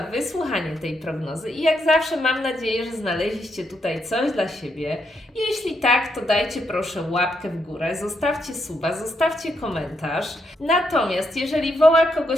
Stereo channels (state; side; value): normal; both; correlation 0.79